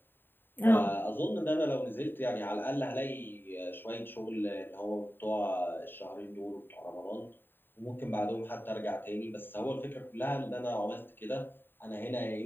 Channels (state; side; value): late; right; 0.096 ms